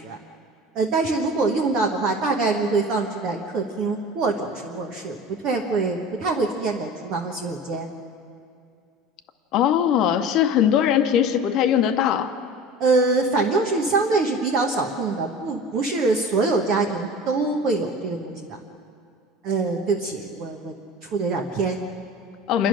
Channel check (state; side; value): normal; both; correlation 0.37